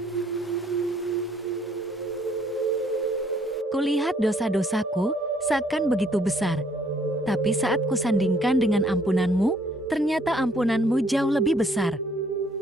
Kulihat dosa-dosaku seakan begitu besar, tapi saat kusandingkan dengan ampunanmu, ternyata ampunanmu jauh lebih besar.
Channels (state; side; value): normal; both; correlation 0.64